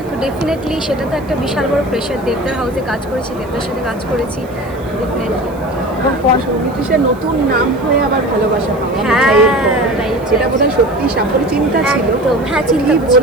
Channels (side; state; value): right; noise; hiss, 27 dB below the sound